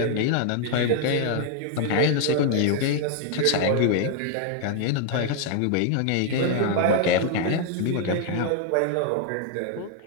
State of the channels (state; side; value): different; both; correlation 0.00